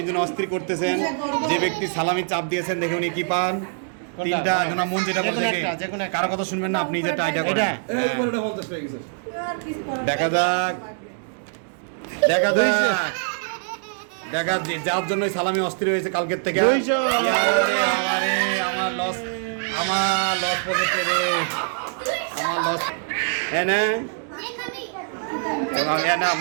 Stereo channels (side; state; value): left; silent; digital silence